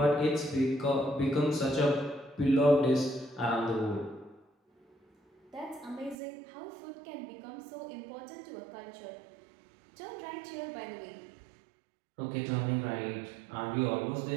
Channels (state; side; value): drops out; left; at 6.2 s